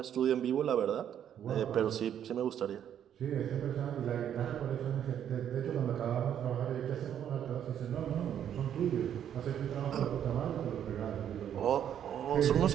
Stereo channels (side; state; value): left; quieter; 9.7 dB